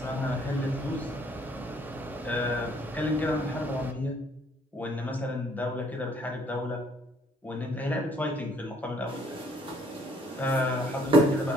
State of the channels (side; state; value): both; normal; correlation 0.63